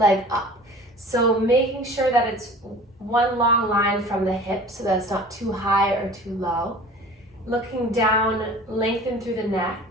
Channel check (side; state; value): both; normal; correlation 0.43